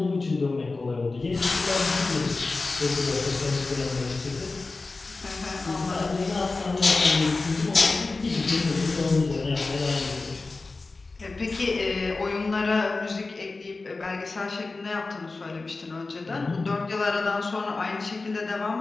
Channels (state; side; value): quieter; right; 3.6 dB